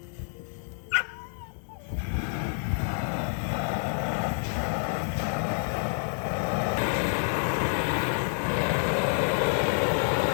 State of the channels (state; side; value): silent; right; 59 dB below the other